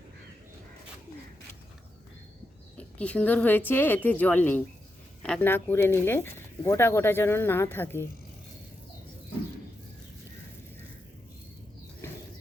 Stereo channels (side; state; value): both; normal; correlation 0.86